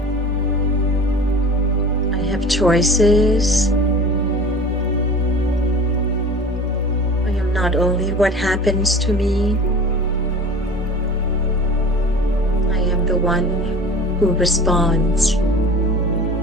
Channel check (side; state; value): both; normal; correlation 0.39